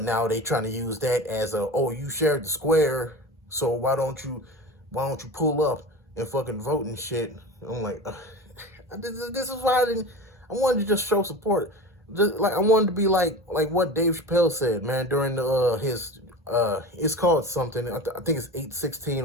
now they trying to use that as you shared the square, so why don't you pull up and fucking vote and shit. I'm like, this is why I wanted to just show support. Just like I wanted to be like what Dave Chappelle said, man, during his it's called something. I think it's 8/16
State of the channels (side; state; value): both; normal; correlation 0.31